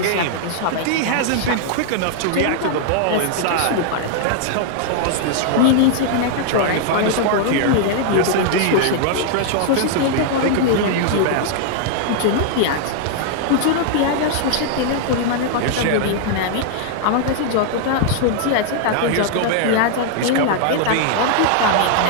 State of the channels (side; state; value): both; different; correlation 0.00